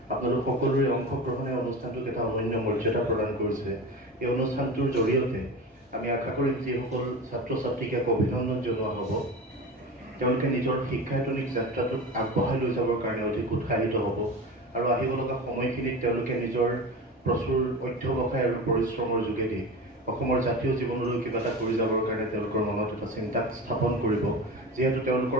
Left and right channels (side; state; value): both; normal; correlation 0.29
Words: আপোনালোক সকলোৰে অংশগ্ৰহণে অনুষ্ঠানটোক এটা অনন্য মৰ্যাদা প্ৰদান কৰিছে। এই অনুষ্ঠানটোৰ জৰিয়তে আমি আশা কৰিম যিসকল ছাত্ৰ ছাত্ৰীক এক অভিনন্দন জনোৱা হ'ব, তেওঁলোকে নিজৰ শিক্ষায়তনিক যাত্ৰাটোক আগবঢ়াই লৈ যাবৰ কাৰণে অধিক উৎসাহিত হ'ব আৰু আহিব লগা সময়খিনিত তেওঁলোকে নিজৰ প্ৰচুৰ অধ্যৱসায় আৰু পৰিশ্ৰমৰ যোগেদি অসমৰ জাতীয় জীৱনলৈ কিবা এটা কৰি যাবৰ কাৰণে তেওঁলোকৰ মনত এটা চিন্তা স্থাপন কৰিব। যিহেতু